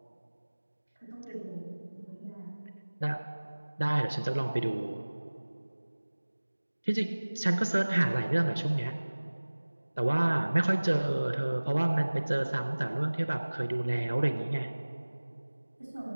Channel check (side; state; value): both; inverted; correlation -1.00